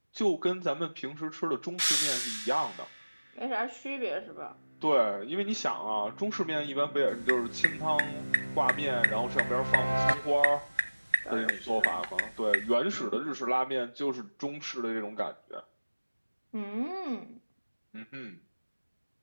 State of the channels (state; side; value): inverted; both; correlation -1.00